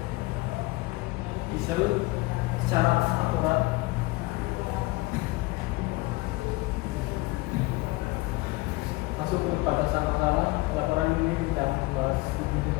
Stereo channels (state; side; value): quieter; right; 21.8 dB